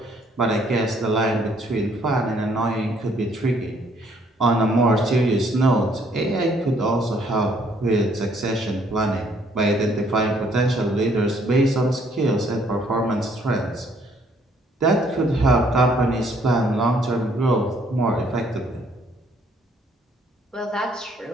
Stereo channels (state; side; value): normal; both; correlation 0.65